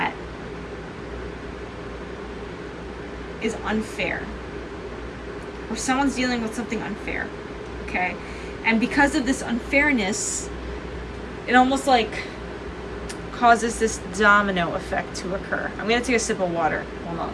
is unfair. Or someone's dealing with something unfair. Okay? And because of this unfairness, it almost like causes this domino effect to occur. I'm going to take a sip of water. Hold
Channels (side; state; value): both; identical; correlation 1.00